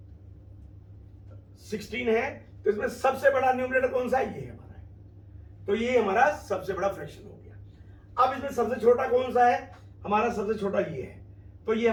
16 है, तो इसमें सबसे बड़ा न्यूमरेटर कौन सा है? ये हमारा है, तो ये हमारा सबसे बड़ा फ्रैक्शन हो गया। अब इसमें सबसे छोटा कौन सा है? हमारा सबसे छोटा ये है, तो ये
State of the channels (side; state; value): both; identical; correlation 1.00